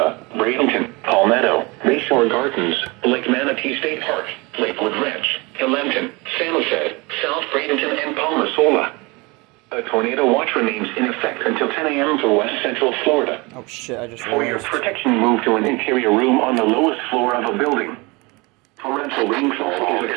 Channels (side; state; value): left; quieter; 25.9 dB